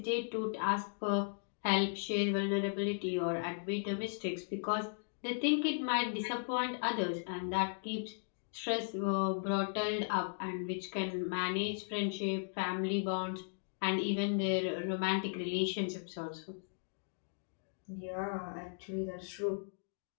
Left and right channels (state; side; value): silent; right; digital silence